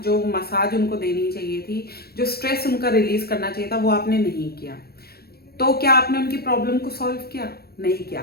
मसाज उनको देनी चाहिए थी, जो स्ट्रेस उनका रिलीज करना चाहिए था, वो आपने नहीं किया। तो क्या आपने उनकी प्रॉब्लम को सॉल्व किया? नहीं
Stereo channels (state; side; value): late; right; 0.46 ms